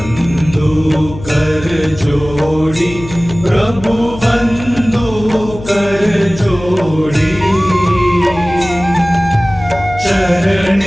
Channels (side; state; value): left; noise; hum, 13 dB below the sound